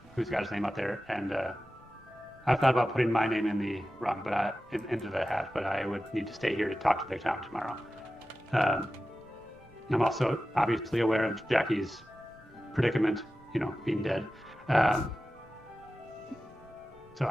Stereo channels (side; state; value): both; normal; correlation 0.94